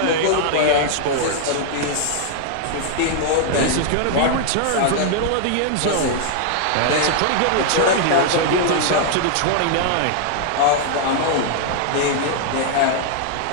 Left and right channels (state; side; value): different; both; correlation 0.00